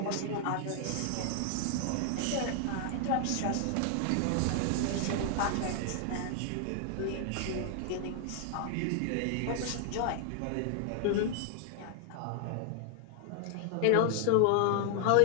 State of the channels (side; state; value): both; different; correlation 0.00